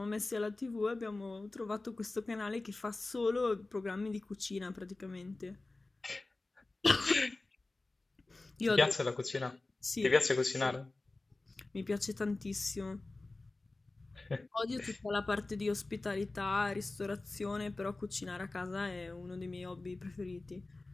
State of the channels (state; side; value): quieter; right; 3.2 dB